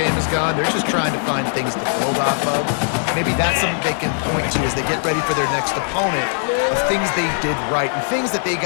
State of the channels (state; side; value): silent; right; digital silence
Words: has gone, they're just trying to find things to build off of. Maybe that's something they can point to as they get ready for their next opponent, of things they did right and things that they